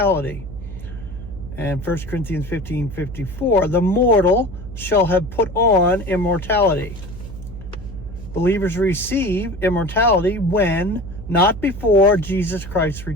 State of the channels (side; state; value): right; noise; hum, 13 dB below the sound